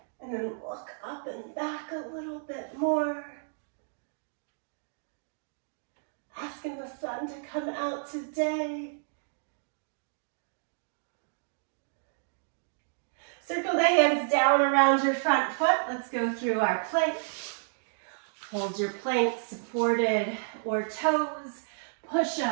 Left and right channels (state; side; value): silent; left; digital silence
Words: And then look up and back a little bit more. Asking the sun to come out today. Circle the hands down around your front foot. Let's go through our plank. Hold your plank supported or toes. Push